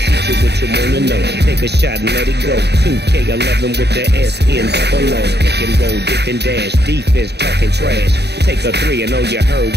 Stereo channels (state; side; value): late; left; 0.49 ms